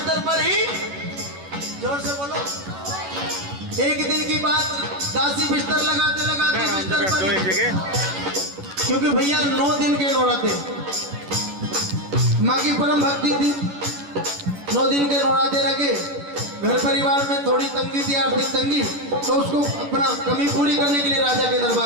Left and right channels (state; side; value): late; left; 11 ms